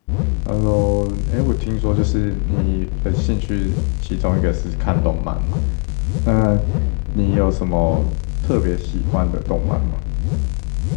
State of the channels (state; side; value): quieter; right; 36.1 dB